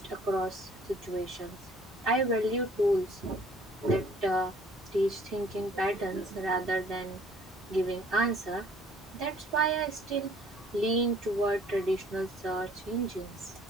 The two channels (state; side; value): normal; both; correlation 0.56